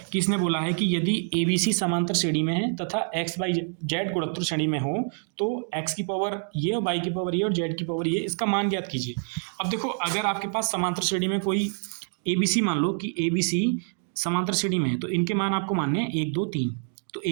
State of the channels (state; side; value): silent; left; 57 dB below the other